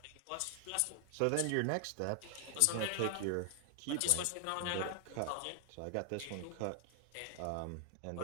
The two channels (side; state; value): both; different; correlation 0.00